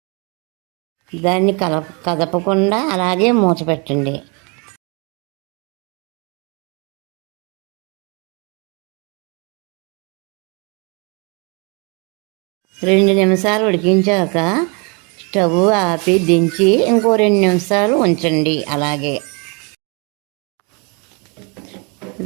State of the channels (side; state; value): left; quieter; 32.7 dB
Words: దాన్ని కదపకుండా అలాగే మూత పెట్టండి. రెండు నిమిషాలు ఉడికించాక స్టవ్ ఆపి దించి ఇంకో 2 నిమిషాలు ఉంచండి. అలాగే